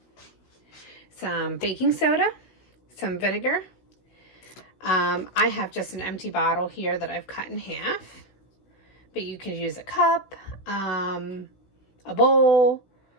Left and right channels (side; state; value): right; late; 16 ms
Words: some baking soda, some vinegar. I have just an empty bottle here that I've cut in half, but you could use a cup, a bowl,